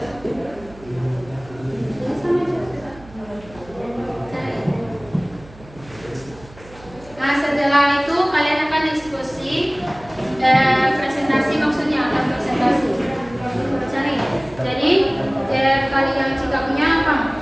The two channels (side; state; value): right; noise; hum, 21 dB below the sound